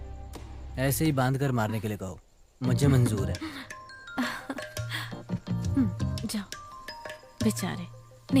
ऐसे ही बांध कर मारने के लिए कहो, मुझे मंजूर है। जाओ। बेचारे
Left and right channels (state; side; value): identical; both; correlation 1.00